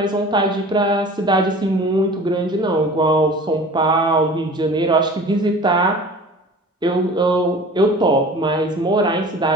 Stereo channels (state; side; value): normal; both; correlation 0.42